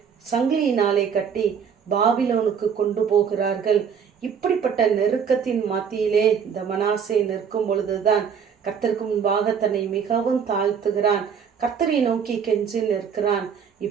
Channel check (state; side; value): quieter; left; 7.0 dB